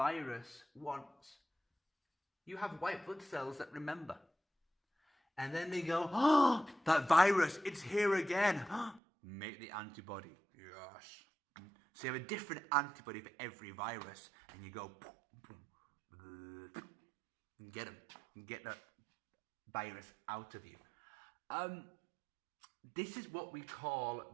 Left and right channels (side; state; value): left; drops out; at 9.0 s